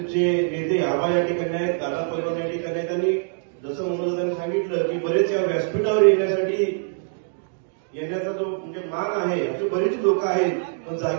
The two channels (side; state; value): left; silent; digital silence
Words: नेते आबा या ठिकाणी आहेत, दादा पैलवान या ठिकाणी आहेत। आणि जसं मनोजदादांनी सांगितलं की बरेच या व्यासपीठावर येण्याचा जो म्हणजे मान आहे, असे बरेच लोक आहेत, पण